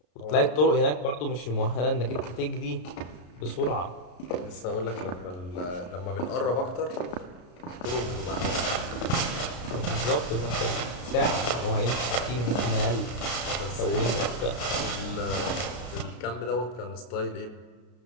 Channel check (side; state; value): right; late; 33 ms